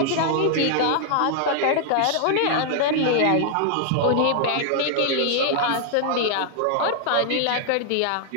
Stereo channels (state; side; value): different; both; correlation 0.00